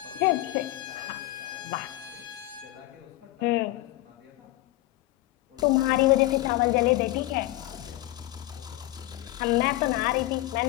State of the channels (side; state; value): right; quieter; 17.1 dB